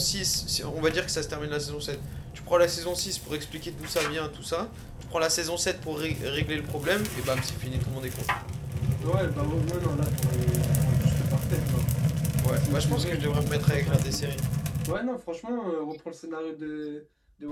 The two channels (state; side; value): identical; both; correlation 1.00